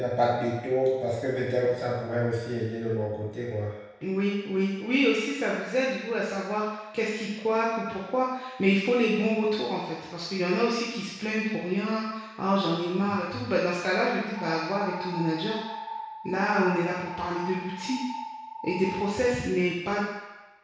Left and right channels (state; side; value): identical; both; correlation 1.00